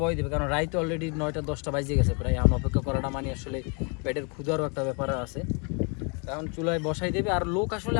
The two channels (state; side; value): quieter; right; 35.0 dB